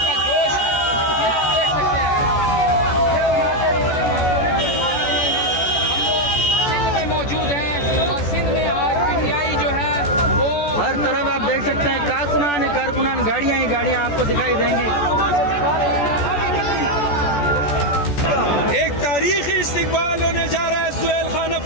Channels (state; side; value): late; right; 14 ms